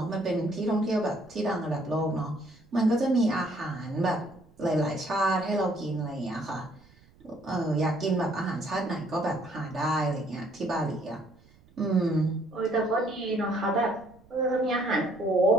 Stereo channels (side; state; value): right; noise; rumble, 28 dB below the sound